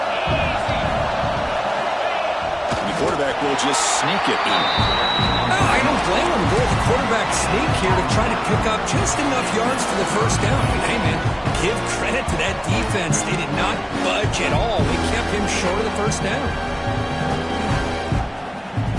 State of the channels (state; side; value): identical; both; correlation 1.00